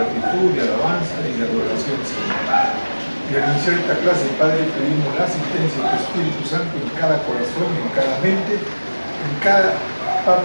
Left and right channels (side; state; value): both; inverted; correlation -1.00